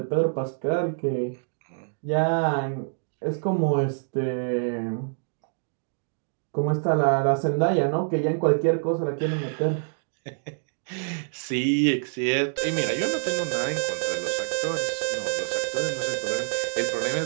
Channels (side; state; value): left; silent; digital silence